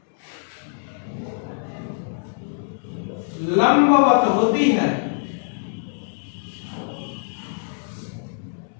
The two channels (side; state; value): right; silent; digital silence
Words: लंबवत होती है।